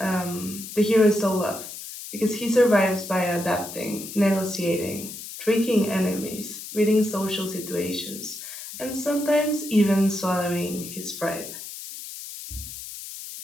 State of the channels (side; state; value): left; noise; hiss, 11 dB below the sound